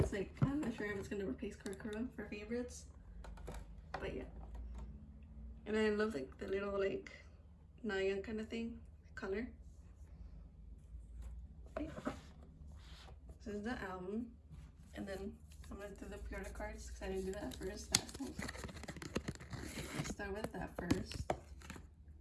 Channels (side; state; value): both; identical; correlation 1.00